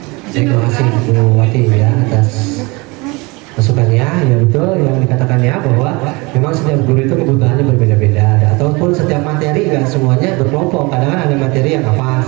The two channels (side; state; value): left; quieter; 25.8 dB